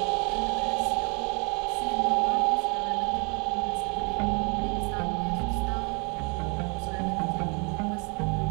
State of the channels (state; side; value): quieter; left; 34.1 dB